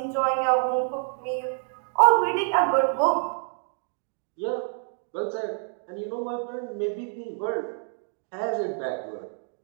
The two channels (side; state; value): left; silent; 60 dB below the other